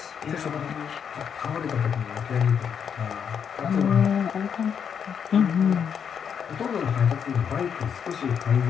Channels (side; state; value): right; quieter; 7.5 dB